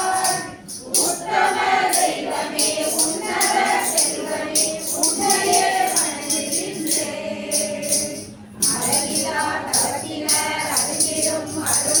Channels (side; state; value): both; identical; correlation 1.00